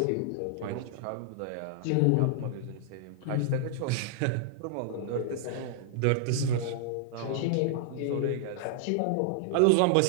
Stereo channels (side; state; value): both; different; correlation -0.01